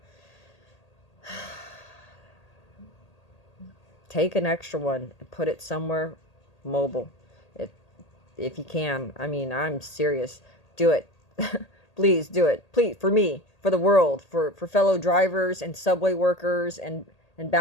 Take an extra one and put it somewhere mobile. If you can. I'm serious. Do it. Please do it. Please, for me, for the world, for fellow drivers and subway workers and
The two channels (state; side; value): late; right; 1.8 ms